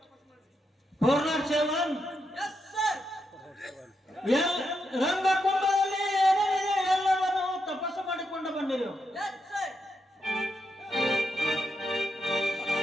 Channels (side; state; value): both; normal; correlation 0.83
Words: ಪೂರ್ಣಾಕ್ಷೇಮನ್ ಎಸ್ ಸರ್. ರಂಗಕುಂಭದಲ್ಲಿ ಏನೇನಿದೆ ಎಲ್ಲವನ್ನು ತಪಸ್ಸು ಮಾಡಿಕೊಂಡು ಬಂದಿರು. Yes sir.